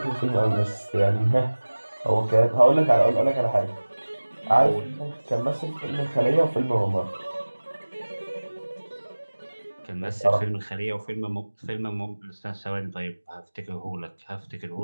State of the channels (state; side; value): inverted; both; correlation -1.00